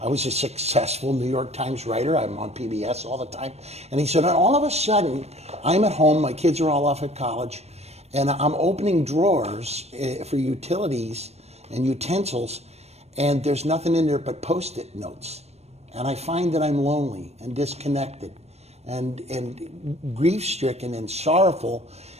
I was a successful New York Times writer. I'm on PBS all the time. And he said, and all of a sudden, I'm at home, my kids are all off at college, and I'm opening drawers for utilities and utensils, and there's nothing in there but Post-it notes. And I find that I'm lonely and disconnected and grief-stricken and sorrowful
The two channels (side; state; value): left; late; 0.31 ms